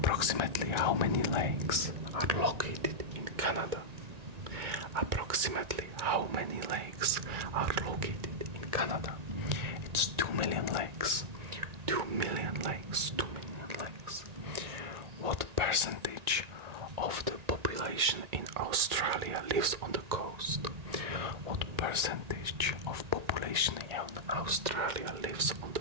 how many lakes are located in Canada? Approximately how many lakes are located in Canada? It's 2 million lakes. 2 million lakes. 2 million lakes. What percentage of the population in Australia lives on the coast? What percentage of population in Australia lives on the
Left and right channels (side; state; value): left; late; 1.9 ms